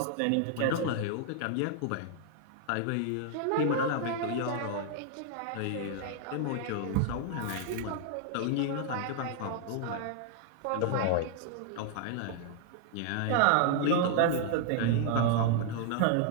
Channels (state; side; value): different; both; correlation 0.00